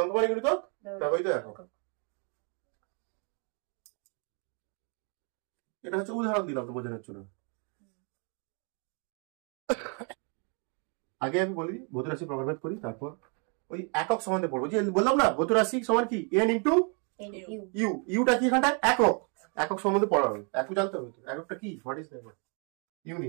গুণিতক ব্যবহৃত একক। এটা হচ্ছে উদাহরণ দিলাম তো বোঝানোর জন্য। আগে আমি বলি ভৌত রাশি প্রকারভেদ করি, তারপর ওই একক সম্বন্ধে পড়বো। যে বললাম না ভৌত রাশি সমান কি এন ইন্টু ইউ, ইউটা কি এখানটা একক, একক সম্বন্ধে পড়া হবে। একক জানতে হবে তো এককটা কি, হোয়াট ইজ একক,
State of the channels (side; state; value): left; quieter; 37.7 dB